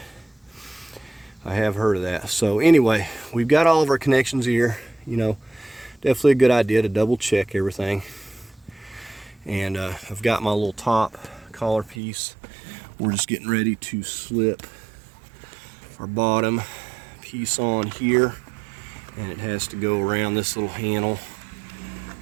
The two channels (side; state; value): left; drops out; at 12.0 s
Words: I have heard of that. So anyway, we've got all of our connections here. You know, definitely a good idea to double check everything. And I've got my little top collar piece. We're just getting ready to slip our bottom piece on here, and it has to go around this little handle,